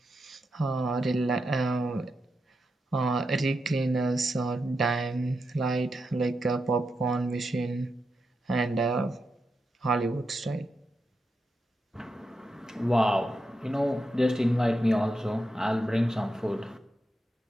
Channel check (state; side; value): normal; both; correlation 0.86